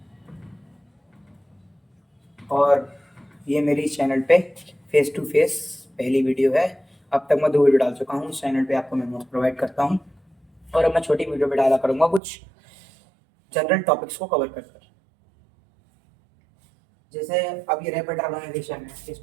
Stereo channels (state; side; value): drops out; left; at 12.2 s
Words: और ये मेरी चैनल पे फेस टू फेस पहली वीडियो है। अब तक मैं 2 वीडियो डाल चुका हूँ इस चैनल पे, आपको मैं नोट्स प्रोवाइड करता हूँ। और अब मैं छोटी वीडियो पे डाला करूँगा कुछ जनरल टॉपिक्स को कवर कर कर। जैसे अब ये रैपिड ऑर्गेनाइजेशन है, इस